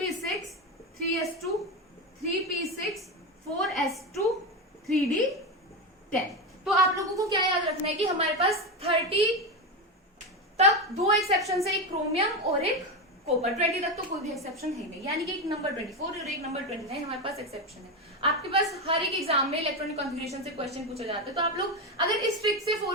3s2, 3p6, 4s2, 3d10। तो आप लोगों को क्या याद रखना है कि हमारे पास 30 तक 2 एक्सेप्शन है, एक क्रोमियम और एक कॉपर। 20 तक तो कोई भी एक्सेप्शन है नहीं, यानी कि एक नंबर 24 और एक नंबर 29 हमारे पास एक्सेप्शन है। आपके पास हर एक एग्जाम में इलेक्ट्रॉनिक कॉन्फ़िगरेशन से क्वेश्चन पूछे जाते हैं, तो आप लोग अगर इस ट्रिक से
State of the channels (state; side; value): normal; both; correlation 0.15